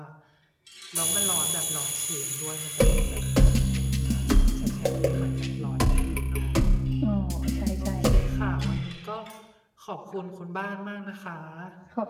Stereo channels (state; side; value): identical; both; correlation 1.00